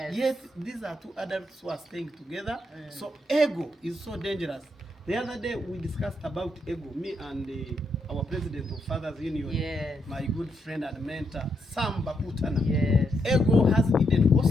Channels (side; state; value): both; normal; correlation 0.79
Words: Yet these are two adults who are staying together. So ego is so dangerous. The other day we discussed about ego, me and our president of Fathers Union, Yes. my good friend and mentor, Sam Bakutana. Yes. Ego has hidden